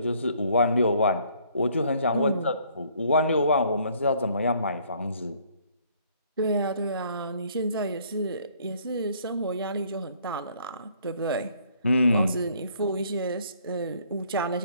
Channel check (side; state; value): both; inverted; correlation -0.62